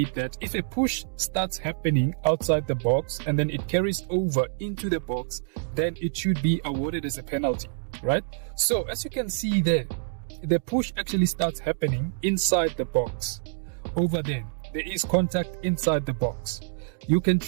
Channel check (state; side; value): silent; left; digital silence